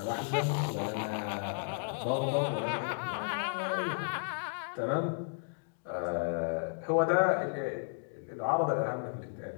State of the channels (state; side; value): silent; right; digital silence